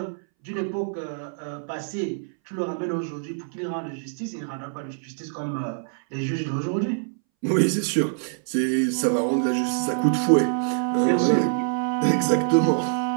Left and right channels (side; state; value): left; silent; 62 dB below the other